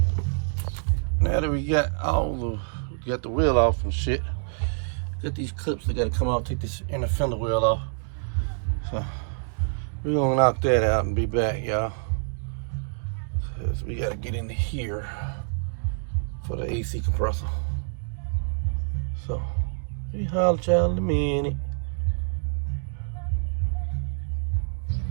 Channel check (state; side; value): silent; left; digital silence